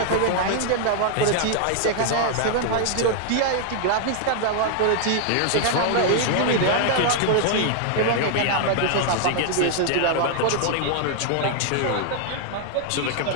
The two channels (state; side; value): different; both; correlation 0.00